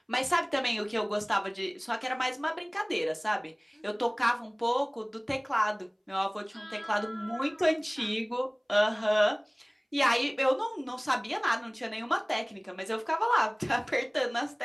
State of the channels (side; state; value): both; identical; correlation 1.00